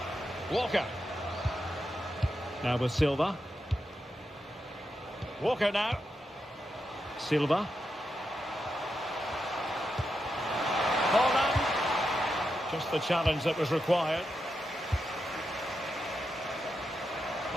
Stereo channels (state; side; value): normal; both; correlation 0.86